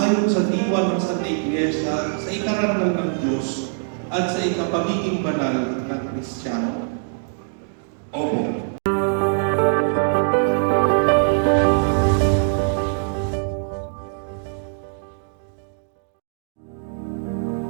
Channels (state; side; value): silent; left; digital silence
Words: sa diwa ng Santa Iglesia sa ikarangal ng Diyos at sa ikapagiging banal ng Kristiyano? Opo.